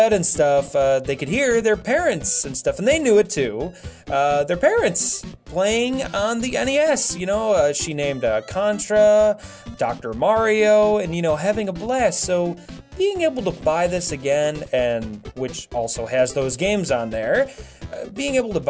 and stuff, they could hear their parents and stuff, and they knew it too. Their parents playing on the NES. You know, she named Contra, Dr. Mario, and having a blast. So being able to buy this again, and which also has those games on there, being able to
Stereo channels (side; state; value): both; identical; correlation 1.00